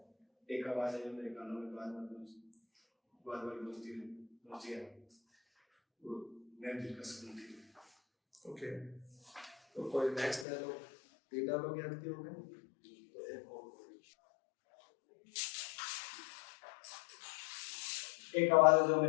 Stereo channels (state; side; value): drops out; right; at 10.5 s